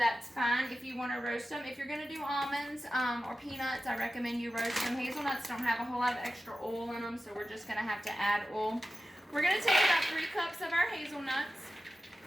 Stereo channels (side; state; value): both; normal; correlation 0.93